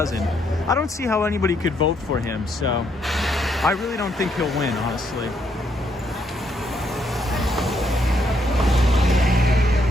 I don't see how anybody could vote for him, so I really don't think he'll win, honestly.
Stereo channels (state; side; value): normal; both; correlation 0.74